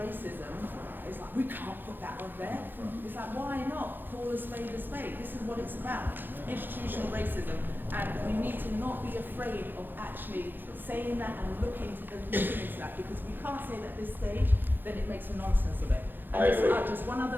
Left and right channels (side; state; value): left; late; 0.094 ms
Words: it's like, we can't put that on there. It's like, why not? Call a spade a spade. This is what it's about, institutional racism. And we need to not be afraid of actually saying that and looking into that, because we can't say that at this stage, then it makes a nonsense of it. And just one